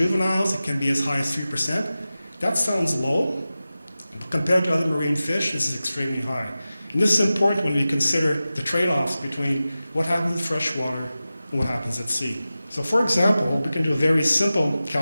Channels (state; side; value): inverted; both; correlation -0.95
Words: it can be as high as 3%. That sounds low. Compared to other marine fish, this is extremely high. And this is important when we consider the trade-offs between what happens in freshwater and what happens at sea. So for example, we can do a very simple